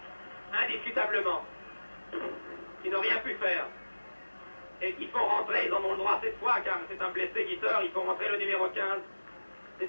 indiscutablement, qui n'ont rien pu faire et qui font rentrer, ils en ont le droit cette fois car c'est un blessé qui sort, ils font rentrer le numéro 15,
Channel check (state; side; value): inverted; both; correlation -1.00